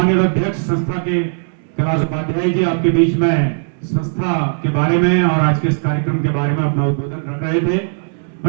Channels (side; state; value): left; silent; 68 dB below the other